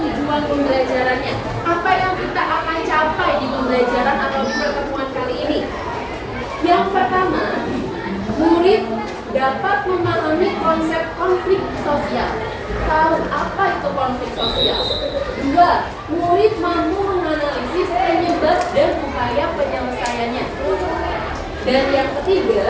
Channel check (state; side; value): identical; both; correlation 1.00